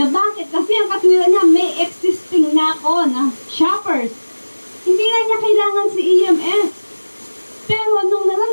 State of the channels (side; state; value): both; inverted; correlation -1.00